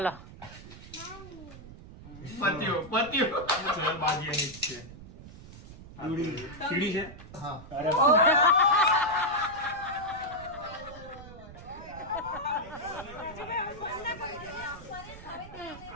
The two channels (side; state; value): right; noise; rumble, 16 dB below the sound